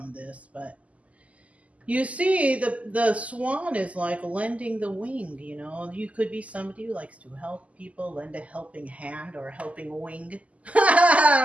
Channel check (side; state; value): left; late; 0.069 ms